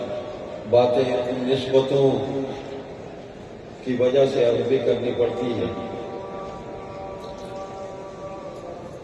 باتیں ان نسبتوں کی وجہ سے عرض بھی کرنی پڑتی ہے.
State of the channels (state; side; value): identical; both; correlation 1.00